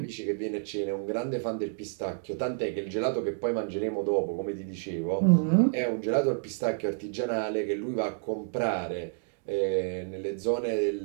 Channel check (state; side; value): silent; left; digital silence